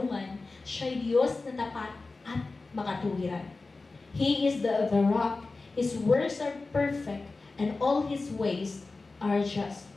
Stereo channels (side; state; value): right; quieter; 3.6 dB